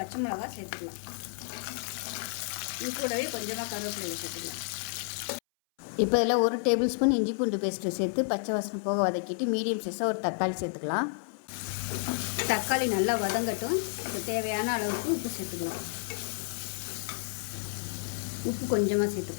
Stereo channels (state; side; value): silent; right; 57 dB below the other